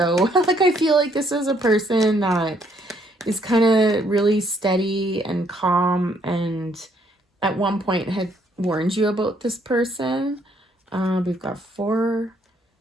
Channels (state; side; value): normal; both; correlation 0.68